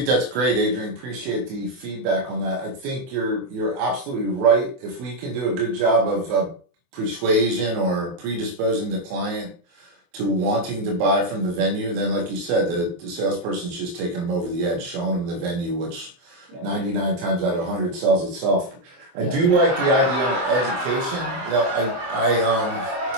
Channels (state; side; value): late; left; 23 ms